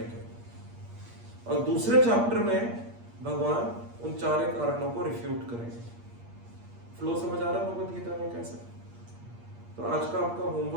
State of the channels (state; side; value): late; left; 8.5 ms